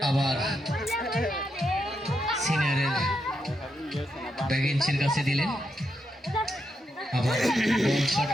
আবার সিনিয়রের ব্যাগিন্সের কাছে দিলেন। আবার বল শট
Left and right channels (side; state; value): both; normal; correlation 0.82